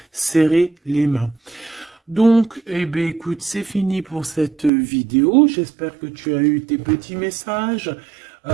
serrer les mains. Donc, eh bien, écoute, c'est fini pour cette vidéo. J'espère que tu as eu tes petits messages.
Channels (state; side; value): drops out; left; at 4.7 s